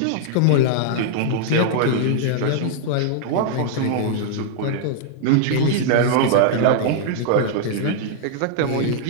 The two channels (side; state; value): both; different; correlation -0.01